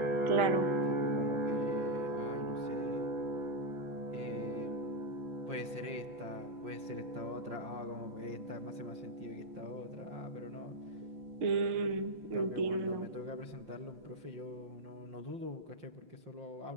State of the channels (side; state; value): left; late; 5.7 ms